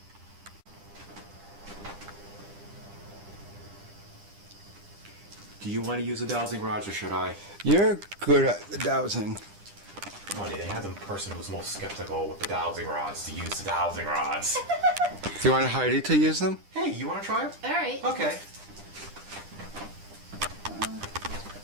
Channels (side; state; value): left; late; 10 ms